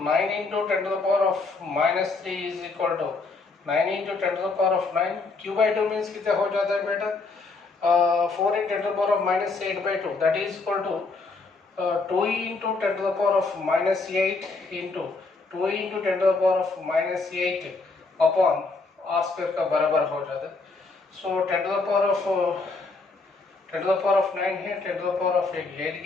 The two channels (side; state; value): right; quieter; 3.9 dB